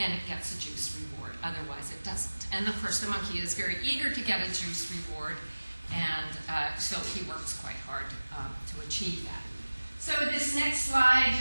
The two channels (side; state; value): both; inverted; correlation -1.00